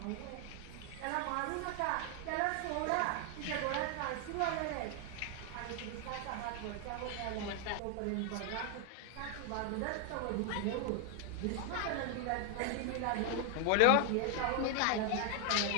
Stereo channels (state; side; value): different; both; correlation 0.00